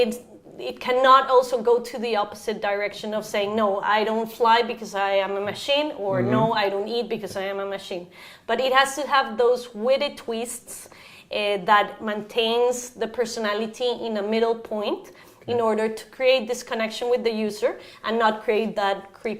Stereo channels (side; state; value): both; identical; correlation 1.00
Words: cannot also go to the opposite direction of saying, no, I don't fly because I am a machine, or no, I don't eat because I am a machine. But it has to have those witty twists that maintains the personality in a middle point in order to create this connection with the user and not create that